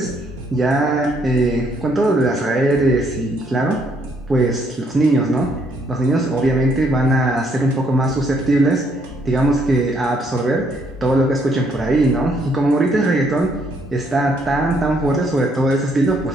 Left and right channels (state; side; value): normal; both; correlation 0.69